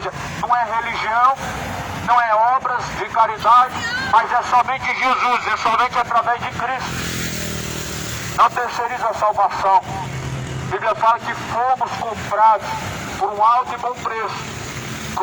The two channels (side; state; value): both; identical; correlation 1.00